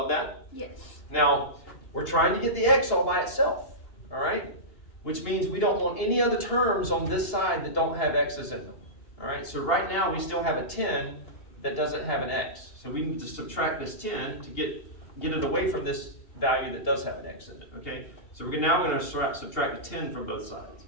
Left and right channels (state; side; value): late; right; 2.8 ms